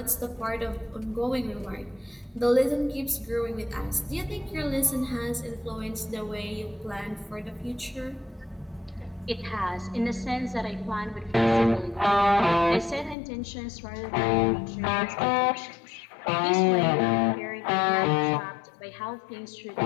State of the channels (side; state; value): right; drops out; at 13.2 s